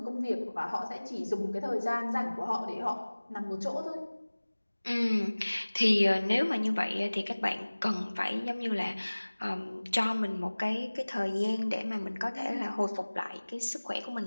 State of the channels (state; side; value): inverted; both; correlation -1.00